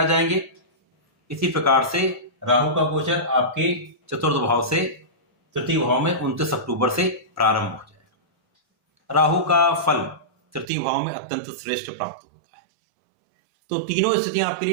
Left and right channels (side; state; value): left; drops out; at 10.7 s